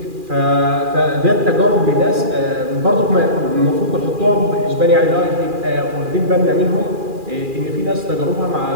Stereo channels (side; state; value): left; late; 2.4 ms